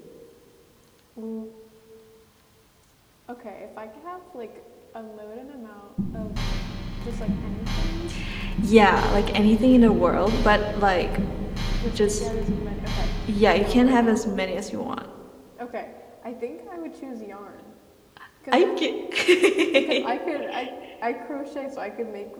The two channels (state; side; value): identical; both; correlation 1.00